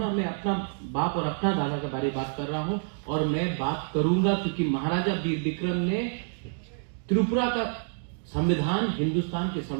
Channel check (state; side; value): silent; left; 58 dB below the other